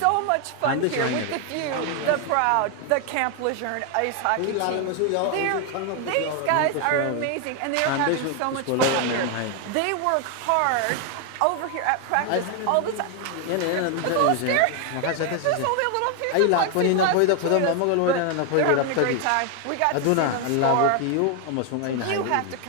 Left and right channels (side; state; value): both; different; correlation 0.00